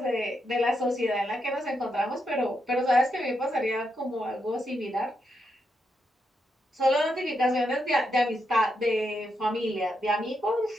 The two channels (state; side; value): normal; both; correlation 0.82